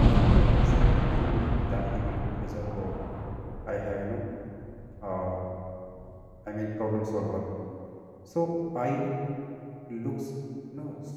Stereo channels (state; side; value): identical; both; correlation 1.00